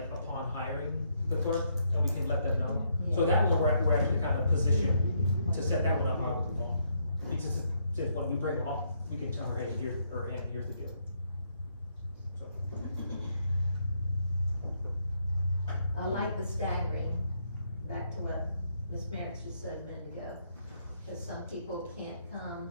upon hiring the clerk, and we can let them know. So that one, we're actually kind of positioned to set that one up how we want. Because since when we bring them on, we can tell her, hey, here's the deal. So, I like the staggering, back to what Ms. Merrick just said a minute ago. Because some people can't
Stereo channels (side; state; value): both; inverted; correlation -0.74